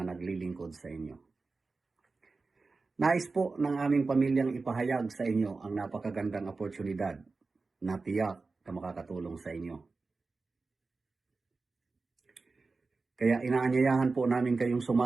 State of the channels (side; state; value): left; quieter; 4.0 dB